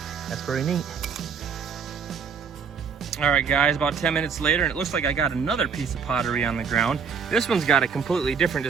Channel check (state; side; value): quieter; left; 6.4 dB